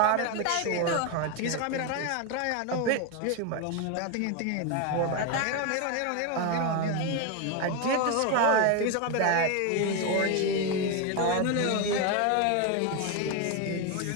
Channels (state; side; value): different; both; correlation 0.02